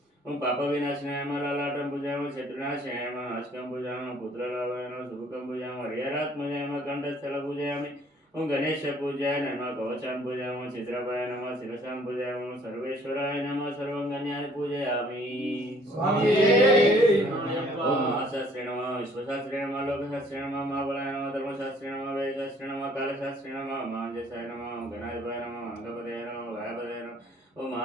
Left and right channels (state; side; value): normal; both; correlation 0.59